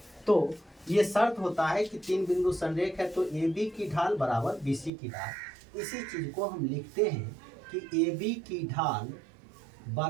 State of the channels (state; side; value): drops out; left; at 4.9 s